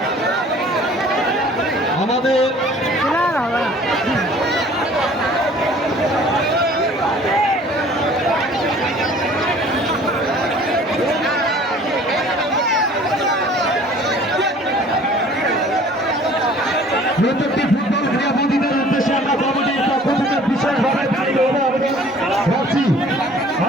আমাদের প্রত্যেকটি ফুটবল ক্রীড়াবিদের উদ্দেশ্যে আমরা কমিটির পক্ষ থেকে বিশেষভাবে ভাবছি,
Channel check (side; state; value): both; normal; correlation 0.51